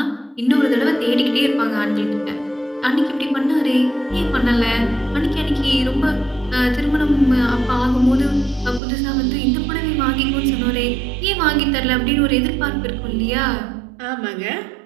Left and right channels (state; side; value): drops out; left; at 8.8 s